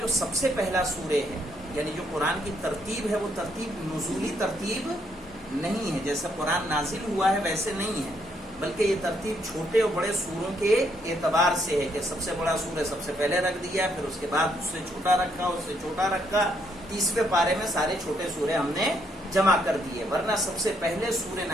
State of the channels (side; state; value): both; normal; correlation 0.73